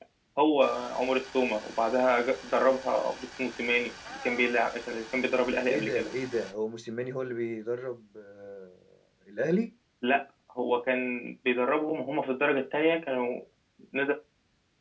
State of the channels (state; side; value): identical; both; correlation 1.00